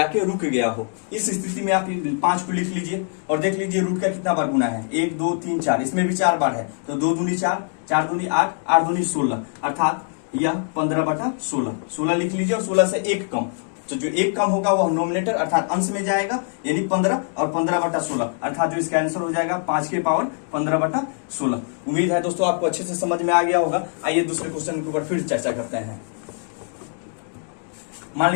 गया हो, इस स्थिति में आप 5 को लिख लीजिए और देख लीजिए रूट का कितना बार गुना है, 1 2 3 4, इसमें भी 4 बार है, तो 2 दूनी 4, 4 दूनी 8, 8 दूनी 16, अर्थात यह 15/16, 16 लिख लीजिए। और 16 से 1 कम, तो जो 1 कम होगा वह नोमिनेटर अर्थात अंश में जाएगा, यानी 15, और 15/16, अर्थात जो इसका आंसर हो जाएगा 5 के पावर 15/16। उम्मीद है दोस्तों आपको अच्छे से समझ में आ गया होगा। आइए दूसरे क्वेश्चन के ऊपर फिर चर्चा करते हैं। मान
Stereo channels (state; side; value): silent; right; 55 dB below the other